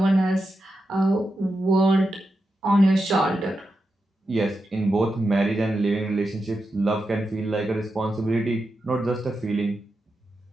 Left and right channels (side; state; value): both; normal; correlation 0.88